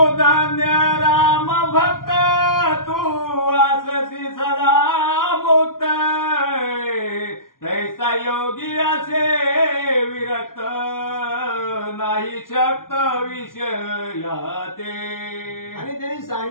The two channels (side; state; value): right; late; 0.91 ms